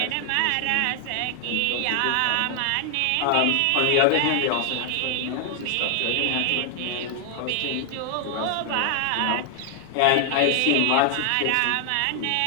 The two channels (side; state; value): both; different; correlation 0.00